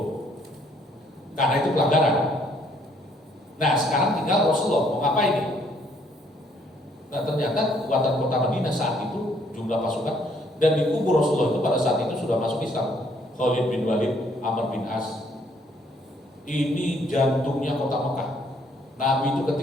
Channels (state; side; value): normal; both; correlation 0.66